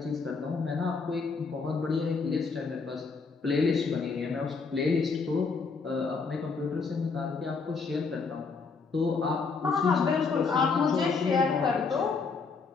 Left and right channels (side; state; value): right; quieter; 4.8 dB